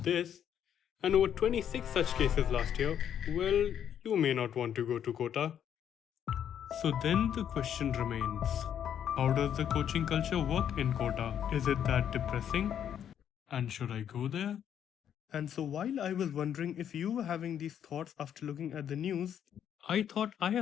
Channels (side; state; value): right; quieter; 9.3 dB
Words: this, and over 26 such cases last year, well, you may not want to go to Kota. So then the question remains, how does the coaching culture work in Kota? Is it that depressing? And should I go there? And so while I was wondering if you were having these thoughts after looking at the news, I thought I